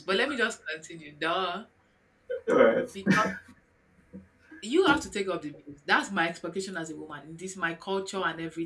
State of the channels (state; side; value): identical; both; correlation 1.00